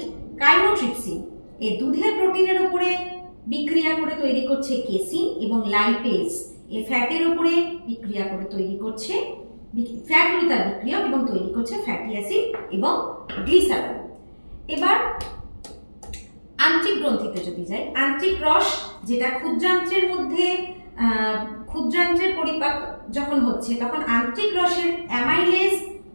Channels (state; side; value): inverted; both; correlation -1.00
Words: কাইমোট্রিপসিন এই দুধের প্রোটিনের উপরে বিক্রিয়া করে তৈরি করছে কেসিন, এবং লাইপেজ এই ফ্যাটের উপরে বিক্রিয়া করে তৈরি করছে ফ্যাট হলো তার বিক্রিয়ক এবং তৈরি করছে ফ্যাটি অ্যাসিড এবং গ্লিসারল। এবার আন্ত্রিক গ্রন্থিতে যদি যাই, আন্ত্রিক রস যেটা ক্ষুদ্রান্ত্রের মধ্যে, ক্ষুদ্রান্ত্রের পরিপাক যখন হচ্ছে তখন আন্ত্রিক রসের অ্যামাইলেজ